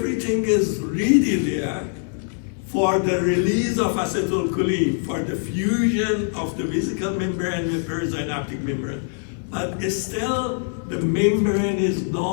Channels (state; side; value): silent; right; 63 dB below the other